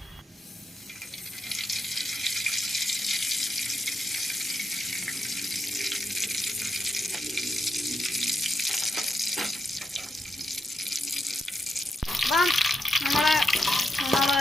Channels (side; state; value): both; normal; correlation 0.84